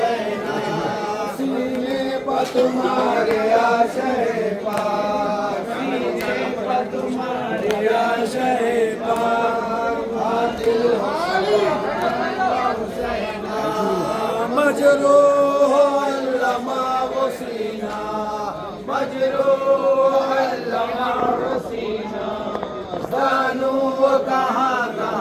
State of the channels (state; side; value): identical; both; correlation 1.00